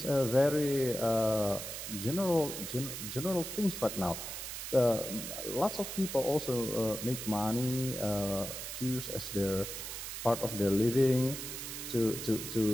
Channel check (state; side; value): noise; right; hiss, 7 dB below the sound